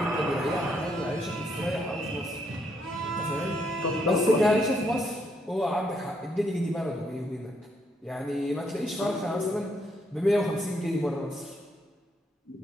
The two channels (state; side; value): normal; both; correlation 0.74